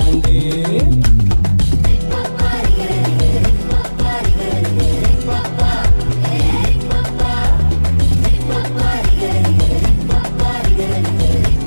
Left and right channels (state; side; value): inverted; both; correlation -1.00